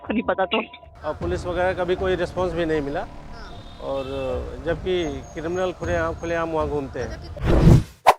नहीं पता तो। और पुलिस वगैरह का भी कोई रिस्पांस भी नहीं मिला, और जबकि क्रिमिनल खुलेआम वहाँ घूमते हैं।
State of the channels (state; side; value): identical; both; correlation 1.00